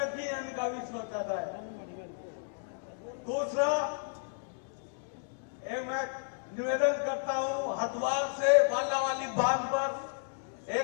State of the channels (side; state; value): right; silent; digital silence